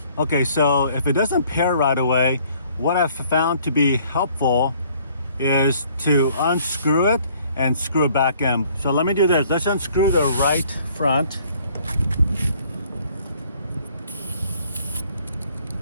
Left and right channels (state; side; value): inverted; both; correlation -0.60